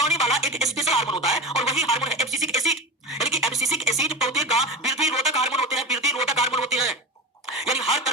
वाला एक स्पेशल हार्मोन होता है, और वही हार्मोन है एब्सिसिक एसिड। यानी कि एब्सिसिक एसिड पौधे का वृद्धि रोधक हार्मोन होते हैं, वृद्धि रोधक हार्मोन होते हैं, यानी हर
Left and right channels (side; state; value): both; normal; correlation 0.25